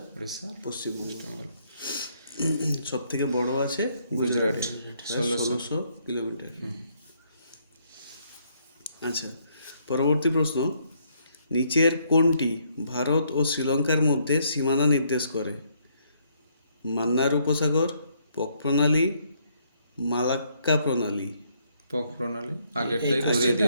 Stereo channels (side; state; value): both; inverted; correlation -0.71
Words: পশ্চিমবঙ্গ। সব থেকে বড় আছে গুজরাট, 1600 কিলোমিটার। আচ্ছা, পরবর্তী প্রশ্ন, নিচের কোনটি ভারত ও শ্রীলঙ্কার মধ্যে সীমানা নির্দেশ করে? মান্নার উপসাগর, পক প্রণালী, মালাক্কা প্রণালী। পক প্রণালী আগেরটাই ঘুরিয়ে